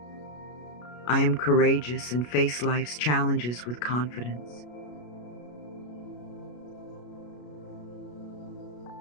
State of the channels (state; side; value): late; right; 33 ms